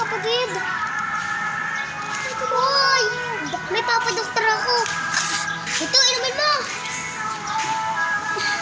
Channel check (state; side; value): identical; both; correlation 1.00